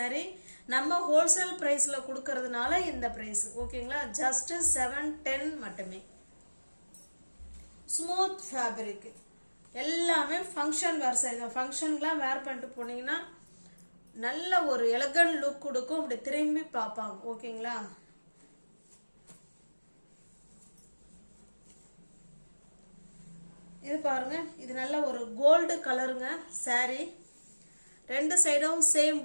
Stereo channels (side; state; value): both; inverted; correlation -1.00